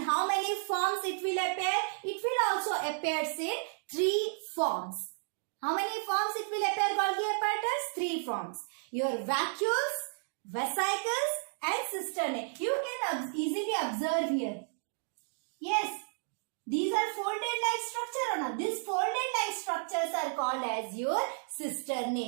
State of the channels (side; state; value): left; silent; digital silence